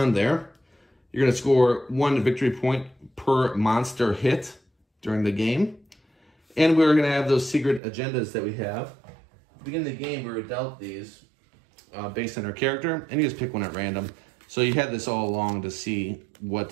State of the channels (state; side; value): drops out; left; at 7.8 s